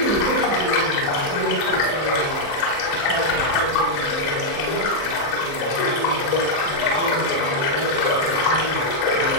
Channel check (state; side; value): late; right; 35 ms